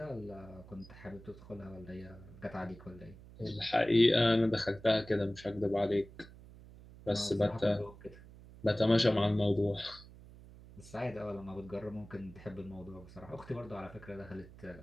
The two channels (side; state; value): right; noise; hum, 19 dB below the sound